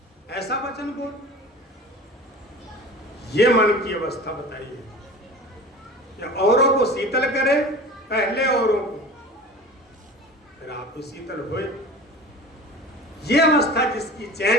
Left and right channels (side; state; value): both; normal; correlation 0.37